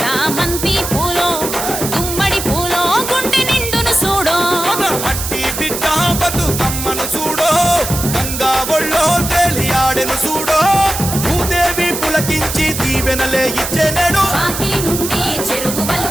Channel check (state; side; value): noise; right; hiss, 5 dB below the sound